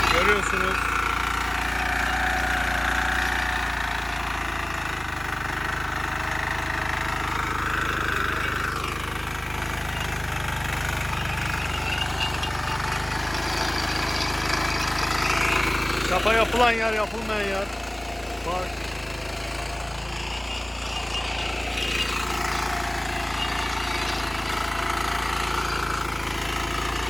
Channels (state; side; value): noise; right; rumble, 23 dB below the sound